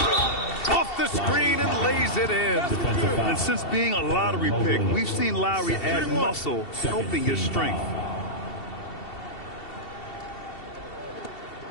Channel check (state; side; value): late; right; 2.7 ms